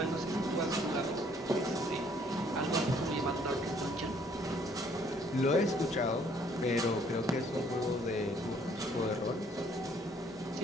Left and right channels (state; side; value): normal; both; correlation 0.62